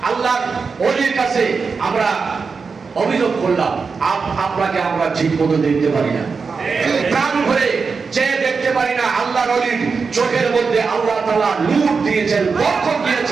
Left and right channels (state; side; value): quieter; left; 5.0 dB